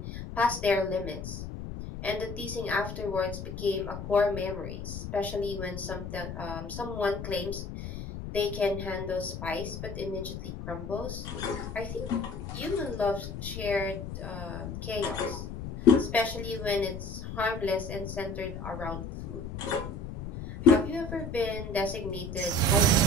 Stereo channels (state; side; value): noise; left; rumble, 8 dB below the sound